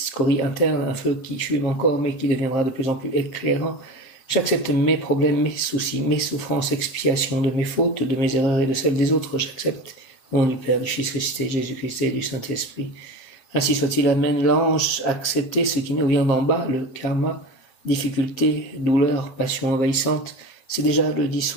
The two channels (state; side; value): late; right; 7.7 ms